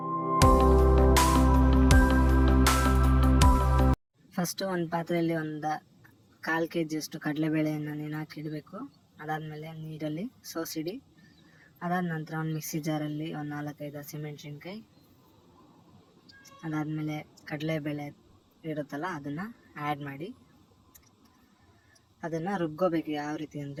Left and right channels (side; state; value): both; identical; correlation 1.00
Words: ಫಸ್ಟು ಒಂದು ಪಾತ್ರೆಯಲ್ಲಿ ಒಂದು 1/4 kg ಅಷ್ಟು ಕಡಲೆಬೇಳೆಯನ್ನು ನೆನೆಹಾಕಿಡಬೇಕು. ಅದಾದಮೇಲೆ ನೀರಲ್ಲಿ ಸೋಸಿಡಿ. ಅದಾದ ನಂತರ ಒಂದು ಮಿಕ್ಸಿ ಜಾರಲ್ಲಿ ಒಂದು 4-5 ಹಸಿಮೆಣ್ಸಿನ್ಕಾಯಿ, ಅದಾದಮೇಲೆ ಕಡಲೆಬೇಳೆ ಇರುತ್ತಲ್ಲ ಅದನ್ನು ಆ್ಯಡ್ ಮಾಡಿ ಅದನ್ನು ರುಬ್ಕೋಬೇಕು. ಯಾವ ರೀತಿ